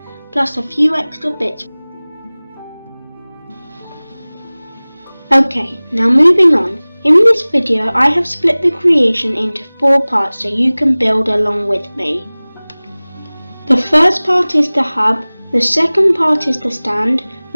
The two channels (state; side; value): inverted; both; correlation -1.00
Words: plus a few extra bits. Okay, now moving on. In this video I have split the creation into 4 parts so you can build along with me. The first part is the hub, the second part is the stand,